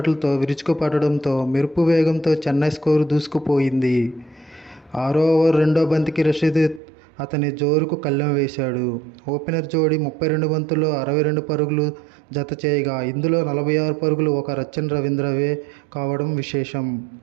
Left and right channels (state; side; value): drops out; left; at 6.8 s